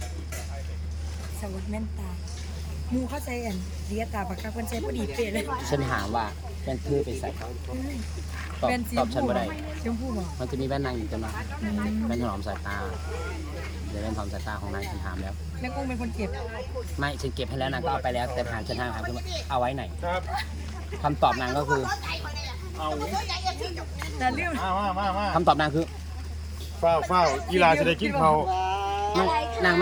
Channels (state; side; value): identical; both; correlation 1.00